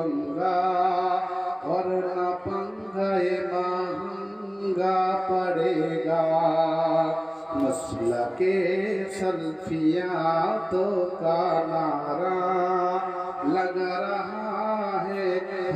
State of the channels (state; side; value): identical; both; correlation 1.00